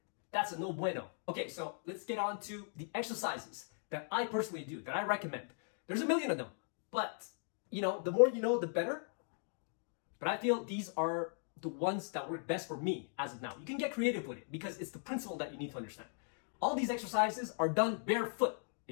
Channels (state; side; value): silent; right; 52 dB below the other